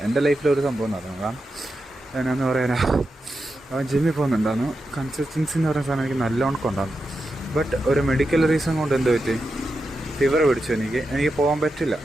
എൻ്റെ ലൈഫിലൊരു സംഭവം നടന്നു. കാരണം എന്നാന്ന് പറയാനാ, അവൻ ജിമ്മിൽ പോകുന്നുണ്ടായിരുന്നു. കൺസിസ്റ്റൻസി എന്ന് പറയുന്ന സാധനം എനിക്ക് നല്ലോണം കൊണ്ടായിരുന്നു. ബട്ട് ഒരു മെഡിക്കൽ റീസൺ കൊണ്ട് എന്ത് പറ്റി, ഫീവർ പിടിച്ചു. എനിക്ക് പോകാൻ പറ്റില്ല.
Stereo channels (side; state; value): both; normal; correlation 0.89